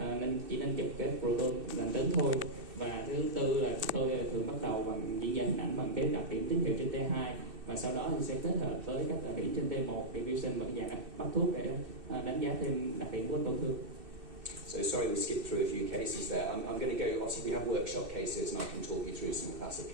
chỉ nên chụp cái proton lành tính thôi. Và thứ tư là tôi thường bắt đầu bằng diễn giải hình ảnh bằng cái đặc điểm tín hiệu trên T2, và sau đó thì sẽ kết hợp với các đặc điểm trên T1, diffusion và dạng bắt thuốc để đánh giá thêm đặc điểm của tổn thương. So sorry we skipped through a few cases there. I'm going to go, obviously we have workshop cases and I can talk you through some classic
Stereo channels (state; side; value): late; left; 2.6 ms